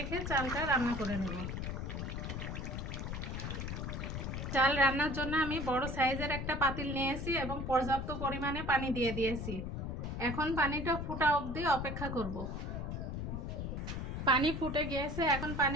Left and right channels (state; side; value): noise; left; rumble, 4 dB below the sound